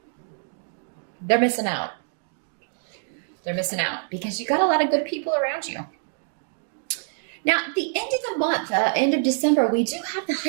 They're missing out. They're missing out because you got a lot of good people around you. Now, at the end of the month, end of December, we do have the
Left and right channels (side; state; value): left; silent; digital silence